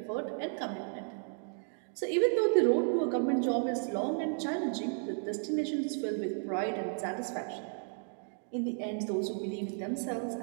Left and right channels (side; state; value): left; silent; 55 dB below the other